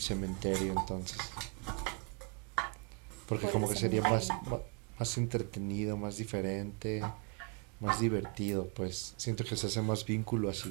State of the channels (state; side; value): quieter; left; 32.6 dB